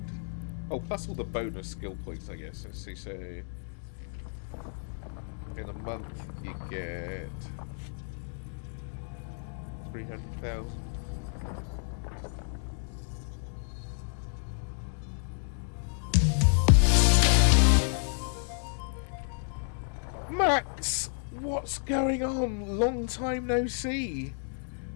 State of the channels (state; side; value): silent; right; 57 dB below the other